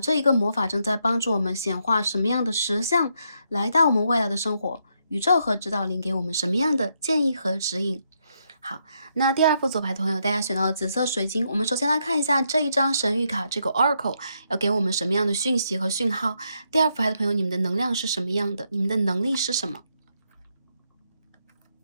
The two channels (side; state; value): both; inverted; correlation -0.78